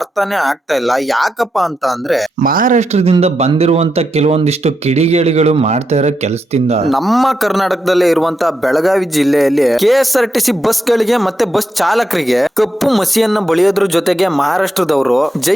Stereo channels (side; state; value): both; normal; correlation 0.85